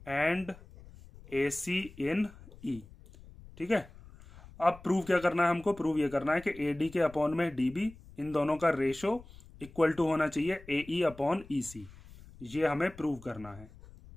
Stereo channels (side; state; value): left; noise; rumble, 20 dB below the sound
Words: and A C in E. ठीक है, अब प्रूव क्या करना है हमको, प्रूव ये करना है कि ए डी के अपॉन में डी बी, इन दोनों का रेशो इक्वल टू होना चाहिए ए ई अपॉन ई सी। ये हमें प्रूव करना है।